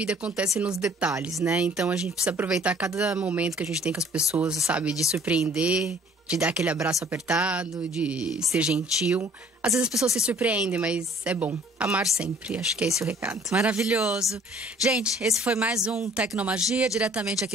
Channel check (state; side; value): normal; both; correlation 0.56